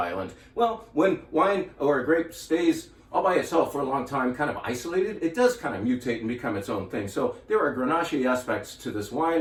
Well, when wine or a grape stays all by itself for a long time, kind of isolated, it does kind of mutate and become its own thing. So there are Grenache aspects to this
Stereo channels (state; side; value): identical; both; correlation 1.00